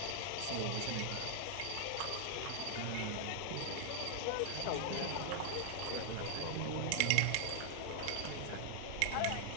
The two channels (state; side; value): different; both; correlation 0.00